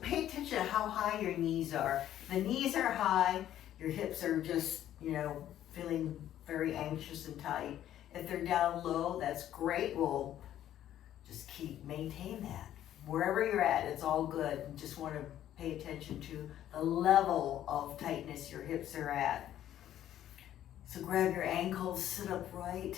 attention to how high your knees are. If the knees are high, your hips are just, feeling very anxious and tight. If they're down low, that's great. We'll just maintain that. Wherever you're at, it's all good. You just want to pay attention to the level of tightness your hips are at. So grab your ankles, sit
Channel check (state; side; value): quieter; right; 11.8 dB